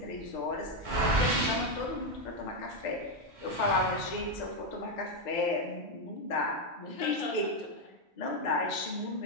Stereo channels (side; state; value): both; normal; correlation 0.05